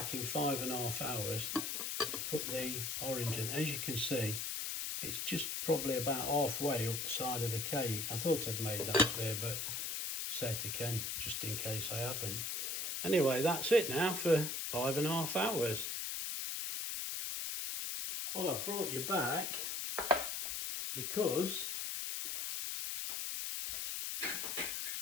in 5.5 hours to put the orange in. As you can see, it's just probably about halfway up the side of the cake. I thought I'd made that clear, but say it again, just in case I haven't. Anyway, that's it now for 5.5 hours. Well, I've brought you back because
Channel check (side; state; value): left; noise; hiss, 2 dB below the sound